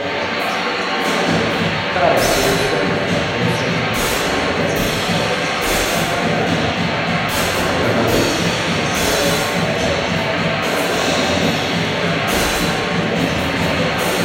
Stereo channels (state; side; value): identical; both; correlation 1.00